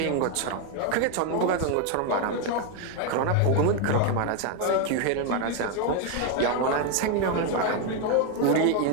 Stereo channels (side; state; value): both; different; correlation 0.01